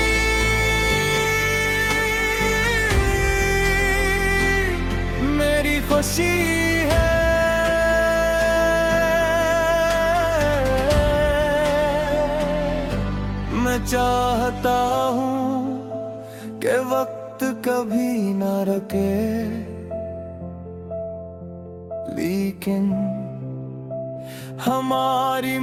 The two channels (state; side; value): identical; both; correlation 1.00